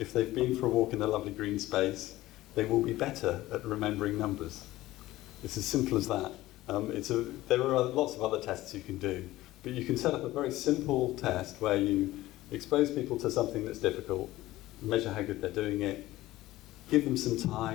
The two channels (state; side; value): quieter; right; 16.7 dB